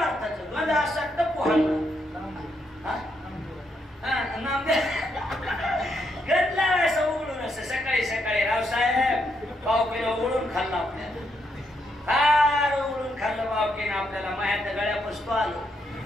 गंध असं तर पोहायला गंधला असं उघडून असं सकाळी सकाळी रावसाहेब पावकीनं उघडून खाल्लं आपल्याला फार उघडून खाल्लं पावकीनं आपल्याला मायाच्या गळ्या पुसतो आलो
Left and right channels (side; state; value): both; normal; correlation 0.78